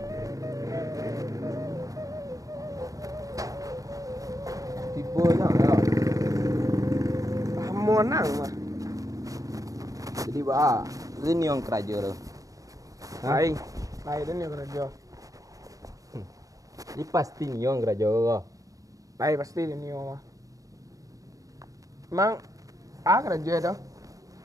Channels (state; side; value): late; left; 0.16 ms